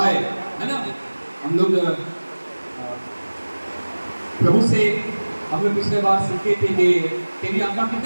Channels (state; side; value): inverted; both; correlation -1.00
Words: है ना। हम लोग प्रभु से हमने पिछले बार सीखे थे कि तेरी आशा,